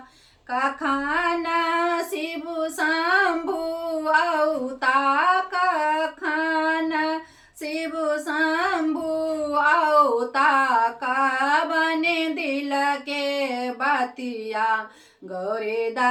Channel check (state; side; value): identical; both; correlation 1.00